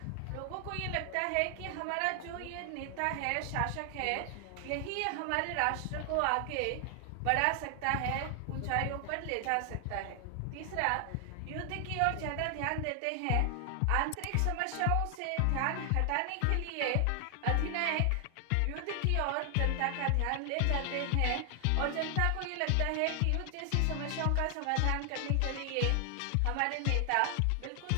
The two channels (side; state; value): both; different; correlation 0.00